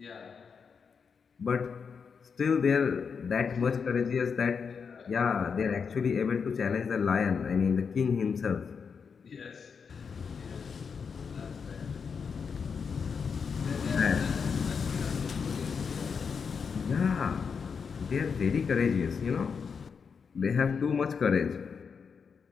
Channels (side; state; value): right; quieter; 6.0 dB